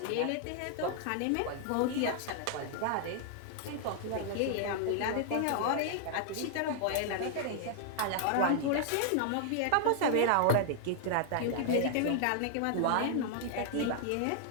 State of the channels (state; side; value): different; both; correlation -0.01